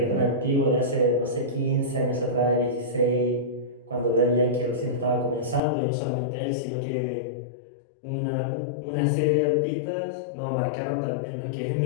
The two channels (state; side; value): drops out; right; at 5.6 s